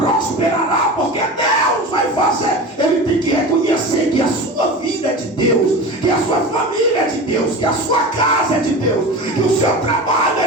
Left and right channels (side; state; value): both; normal; correlation 0.30